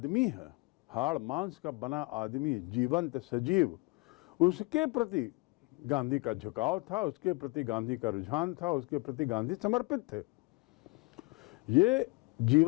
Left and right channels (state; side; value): quieter; right; 26.3 dB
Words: है, हाड़ मांस का बना आदमी, जीवंत सजीव, उसके प्रति गांधी का झुकाव था, उसके प्रति गांधी का रुझान था, उसके प्रति गांधी समर्पित थे। ये